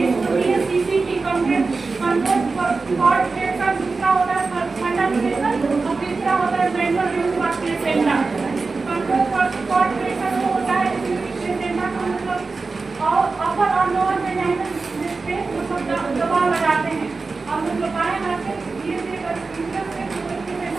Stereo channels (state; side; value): quieter; left; 4.1 dB